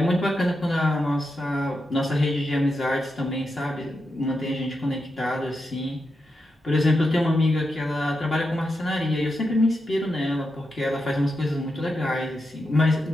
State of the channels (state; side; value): normal; both; correlation 0.87